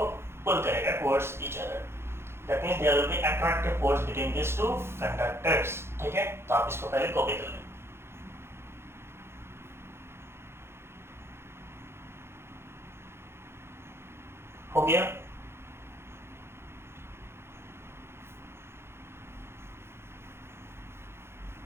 pull करेगा towards each other. That means there will be attractive force between these two conductors. ठीक है, तो आप इसको पहले कॉपी कर लें. हो गया?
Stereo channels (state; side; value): late; left; 0.12 ms